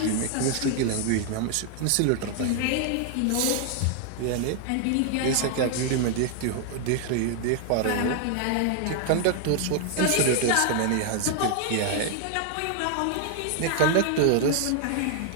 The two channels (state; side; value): different; both; correlation 0.00